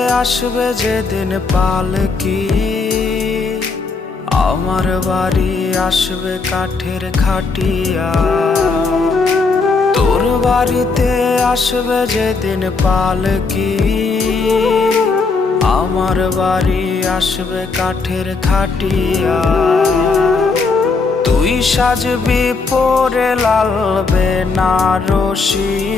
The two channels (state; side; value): quieter; right; 4.3 dB